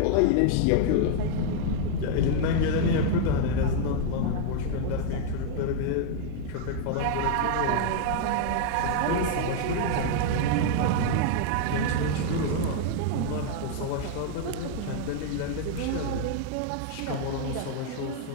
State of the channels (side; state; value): both; different; correlation 0.00